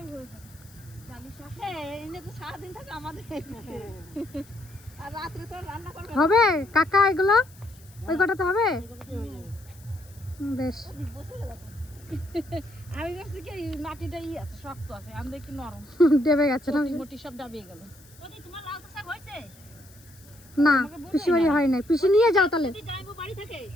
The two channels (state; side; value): noise; left; hiss, 25 dB below the sound